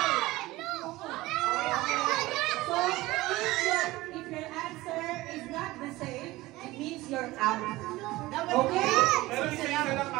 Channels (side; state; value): left; quieter; 18.8 dB